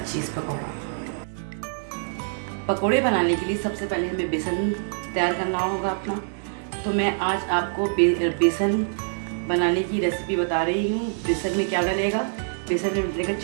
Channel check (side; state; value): left; silent; digital silence